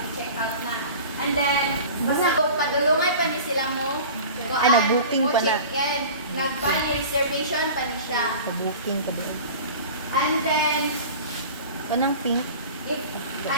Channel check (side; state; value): both; inverted; correlation -0.38